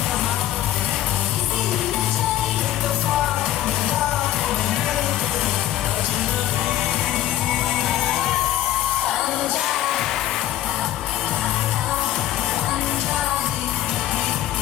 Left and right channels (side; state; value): right; quieter; 13.2 dB